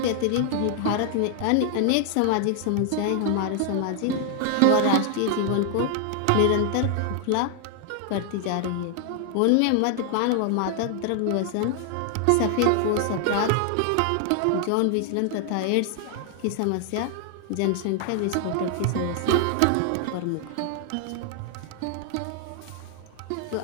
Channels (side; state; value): both; different; correlation 0.00